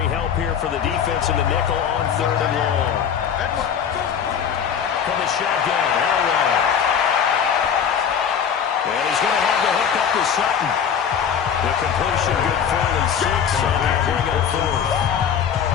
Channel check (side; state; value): right; quieter; 7.8 dB